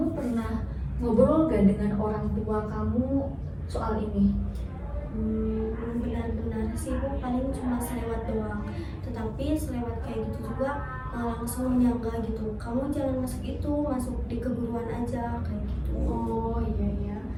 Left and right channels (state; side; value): identical; both; correlation 1.00